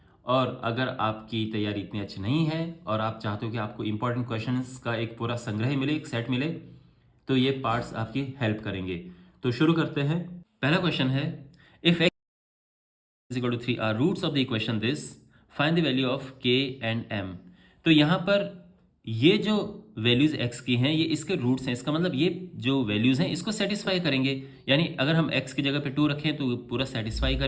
और अगर आपकी तैयारी इतनी अच्छी नहीं है और आप चाहते हो कि आपको इंपॉर्टेंट क्वेश्चंस का एक पूरा संग्रह मिले, एक सेट मिले, तो ये पार्ट्स आपकी हेल्प करेंगे। तो शुरू करते हैं। पहला क्वेश्चन है, if x is equal to 3 are roots of the equation this, find the value of k and m। तो यहाँ पर ये जो वैल्यूज x की हैं ये इसके रूट्स हैं, इसका मतलब ये जो वैल्यूज हैं इसको सेटिस्फाई करेंगे। यानी अगर हम x की जगह पे 2 रखें तो पूरा सेटिस्फाई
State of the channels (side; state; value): both; identical; correlation 1.00